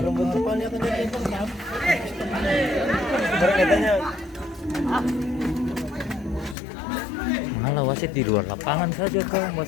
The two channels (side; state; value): right; drops out; at 6.6 s